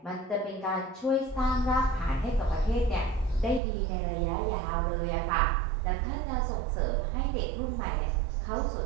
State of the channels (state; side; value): drops out; left; at 3.6 s